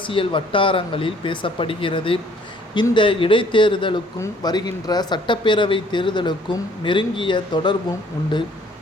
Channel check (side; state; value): both; normal; correlation 0.59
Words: வட்டாரங்களில் பேசப்படுகிறது. இந்த இடைத்தேர்தலுக்கும் வருகின்ற சட்டப்பேரவை தேர்தலுக்கும் நெருங்கிய தொடர்பும் உண்டு.